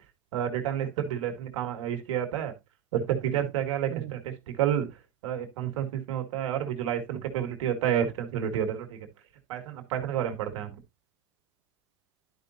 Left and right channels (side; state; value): left; quieter; 9.6 dB